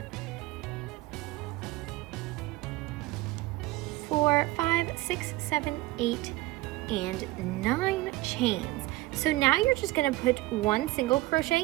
4, 5, 6, 7, 8, and 9 chains. So now you're just gonna put 1 single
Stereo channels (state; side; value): quieter; left; 18.8 dB